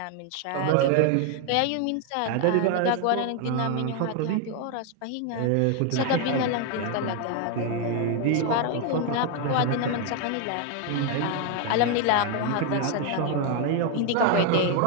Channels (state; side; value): different; both; correlation 0.01